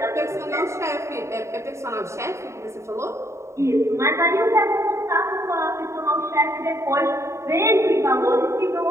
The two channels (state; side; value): late; left; 0.14 ms